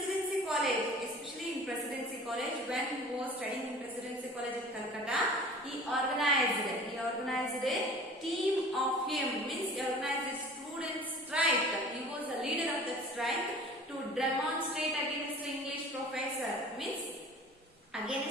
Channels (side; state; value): both; normal; correlation 0.44